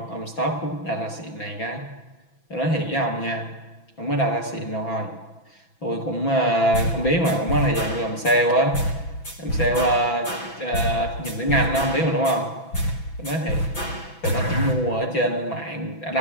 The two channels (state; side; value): late; right; 6.0 ms